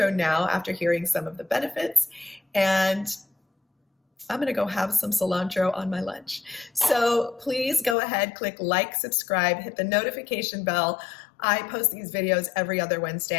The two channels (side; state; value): right; drops out; at 8.0 s